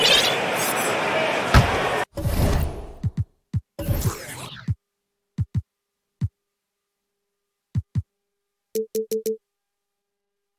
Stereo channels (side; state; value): both; identical; correlation 1.00